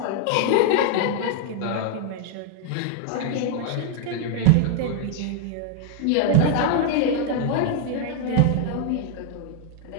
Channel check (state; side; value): different; both; correlation 0.00